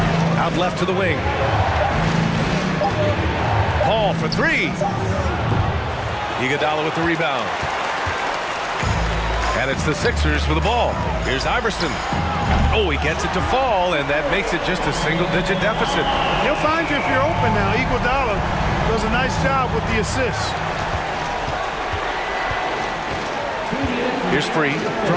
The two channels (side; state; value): both; identical; correlation 1.00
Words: Out left to the wing. Paul for three. Iguodala with the rebound. And it's the Sixers for the ball. Here's Iverson. Oh, he gets it to fall, and that makes it just a single-digit deficit. He'll find you if you're open now. Iguodala does a nice job with the assist. Here's Free